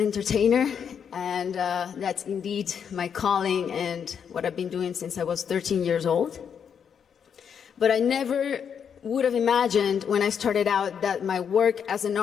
entertainer, and that's indeed my calling and what I've been doing since I was 13 years old. But I never would have imagined when I started out that my work as an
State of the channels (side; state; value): right; quieter; 7.5 dB